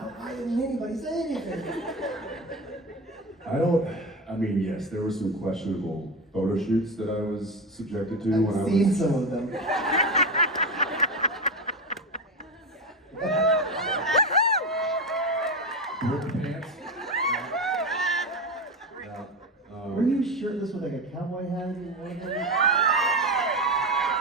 why didn't anybody say anything? I mean, yes, there were some questionable photo shoots that I was subjected to when I I've seen was... some of them. Pants. Yeah. Were you shirtless with like a cowboy hat in one of them?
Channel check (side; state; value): both; normal; correlation 0.19